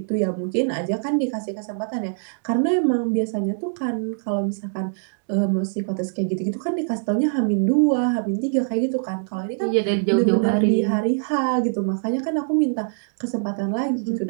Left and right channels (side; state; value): left; silent; digital silence